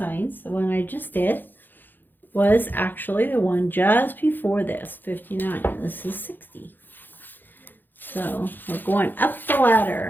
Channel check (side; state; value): right; late; 0.091 ms